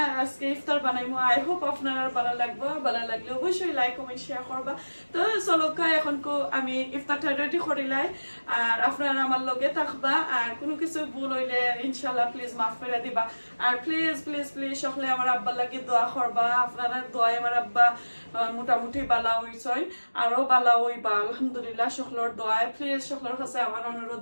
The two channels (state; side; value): inverted; both; correlation -1.00